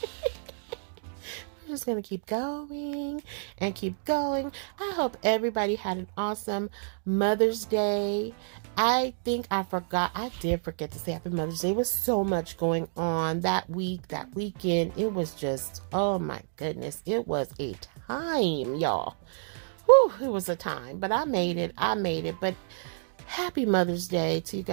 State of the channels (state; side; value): silent; left; digital silence